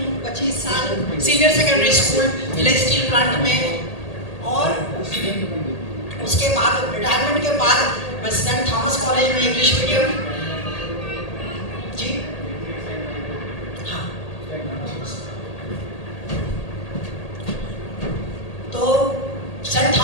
25 साल senior secondary school village steel plant में, और उसके बाद रिटायरमेंट के बाद मैं सेंट थॉमस कॉलेज में इंग्लिश मीडियम, जी हाँ, तो सेंट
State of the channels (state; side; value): late; right; 1.8 ms